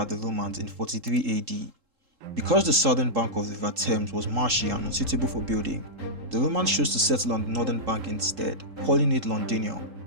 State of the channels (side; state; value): left; late; 3.7 ms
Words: the Romans in 43 AD. Because the southern bank of the River Thames was marshy and unsuitable for building, the Romans chose to settle on the northern bank instead, calling it Londinium,